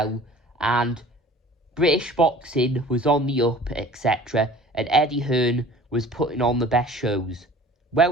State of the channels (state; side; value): normal; both; correlation 0.45